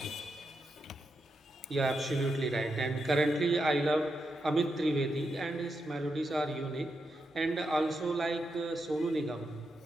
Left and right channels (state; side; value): normal; both; correlation 0.85